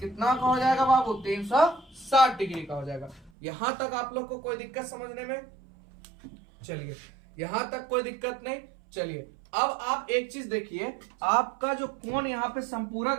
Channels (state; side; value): drops out; left; at 3.3 s